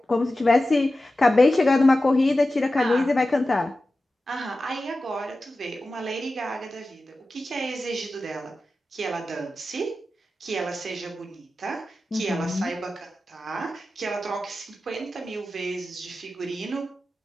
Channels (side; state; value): both; normal; correlation 0.94